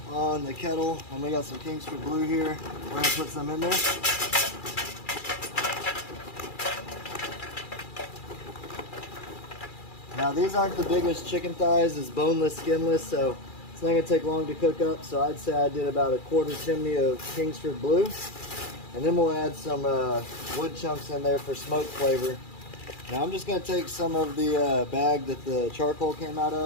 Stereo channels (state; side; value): late; right; 2.4 ms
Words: on the kettle and we got some Kingsford Blue here. We're going to put some in there. Now these aren't the biggest chicken thighs, it's boneless, skinless, so it's not going to take long to cook up. So I'd say I did about a quarter chimney of Kingsford Blue. And then we'll add some wood chunks in there for smoke flavor. Now I'm just going to take some of the bag that the charcoal came out